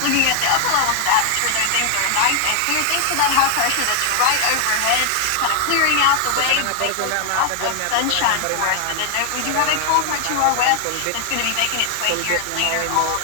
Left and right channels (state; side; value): different; both; correlation 0.00